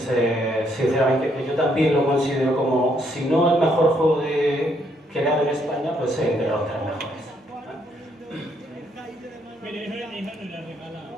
sinceramente pues yo también lo considero como, si no el mejor juego creado en España, pues entre los tres mejores.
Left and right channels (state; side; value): normal; both; correlation 0.72